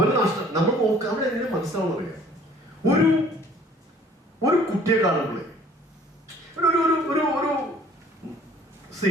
നഷ്ടം. നമ്മൾ നോക്കാം, നമ്മൾ എങ്ങനെ മനസ്സിലാവുന്ന അറിയാം. ഒരു കുട്ടിയെ കാണുമ്പോഴേ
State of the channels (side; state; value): both; normal; correlation 0.54